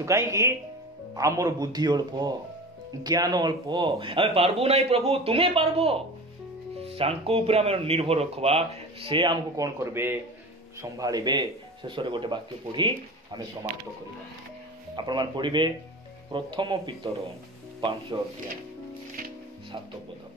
କାହିଁକି? ଆମର ବୁଦ୍ଧି ଅଳ୍ପ, ଜ୍ଞାନ ଅଳ୍ପ, ଆମେ ପାରବୁ ନାହିଁ ପ୍ରଭୁ, ତୁମେ ପାରବ। ତାଙ୍କ ଉପରେ ଆମେ ନିର୍ଭର ରଖିବା, ସେ ଆମକୁ କଣ କରିବେ? ସମ୍ଭାଳିବେ। ଶେଷରେ ଗୋଟେ ବାକ୍ୟ ପଢି ଆମେ ସମାପ୍ତ କରିବା। ଆପଣମାନେ ପଢିବେ ପ୍ରଥମ ପିତର 5 ଅଧ୍ୟାୟ 7 ପଦ।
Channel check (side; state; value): both; normal; correlation 0.34